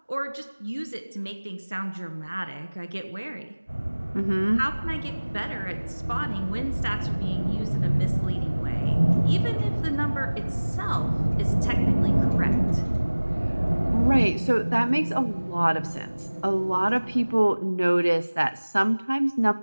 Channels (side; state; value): both; inverted; correlation -1.00